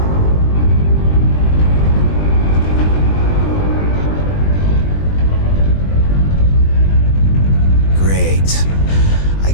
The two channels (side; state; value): right; late; 20 ms